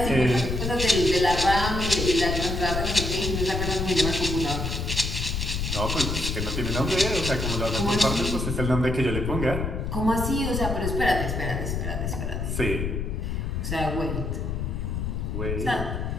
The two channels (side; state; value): left; noise; rumble, 2 dB below the sound